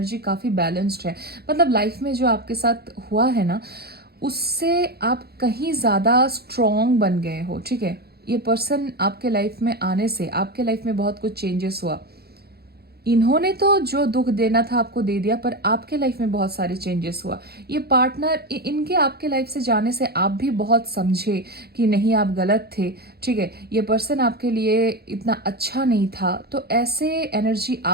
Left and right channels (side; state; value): left; late; 0.46 ms